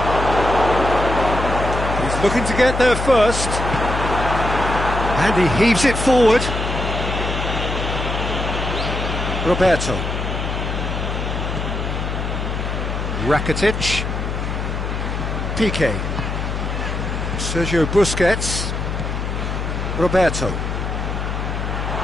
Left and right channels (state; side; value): noise; left; hum, 3 dB below the sound